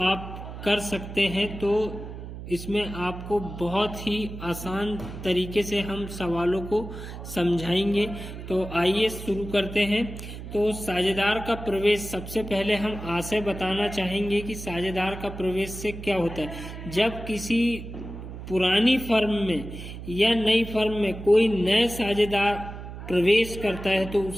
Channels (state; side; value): noise; right; hum, 10 dB below the sound